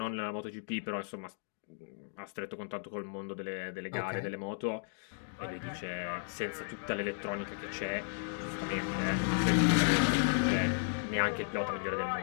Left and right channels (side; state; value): right; silent; digital silence